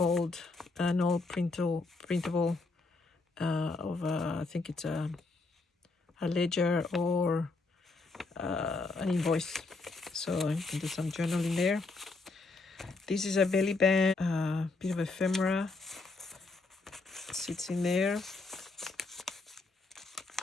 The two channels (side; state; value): right; quieter; 3.7 dB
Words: old printable of I think it's a ledger or an invoice. So I can do some journaling there. This is a belly band, bit of ephemera sits in there.